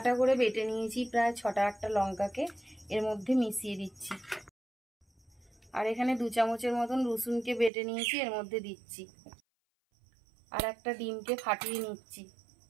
করে বেটে নিয়েছি, প্রায় 6টা-8টা লঙ্কাকে এর মধ্যে মিশিয়ে দিচ্ছি। আর এখানে 2 চামচের মতন রসুনকে বেটে নিয়েছি, এর মধ্যে দিচ্ছি। আর একটা ডিমকে ফাটিয়ে নিচ্ছি।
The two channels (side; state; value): left; drops out; at 7.7 s